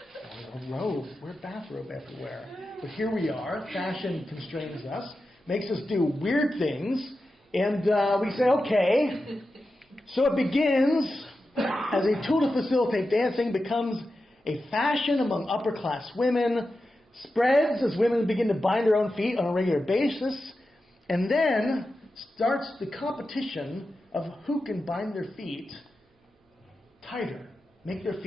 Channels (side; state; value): both; normal; correlation 0.91